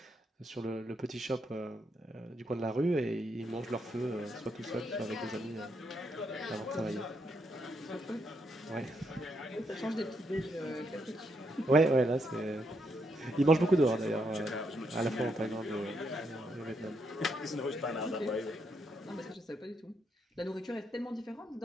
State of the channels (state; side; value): normal; both; correlation 0.78